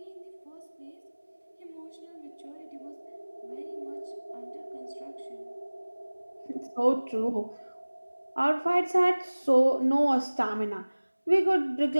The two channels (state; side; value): inverted; both; correlation -1.00